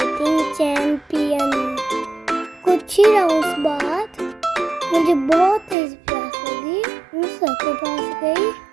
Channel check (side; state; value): left; drops out; at 5.8 s